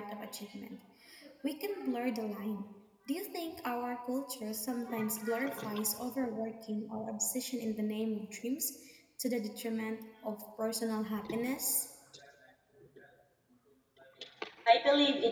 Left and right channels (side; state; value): both; identical; correlation 1.00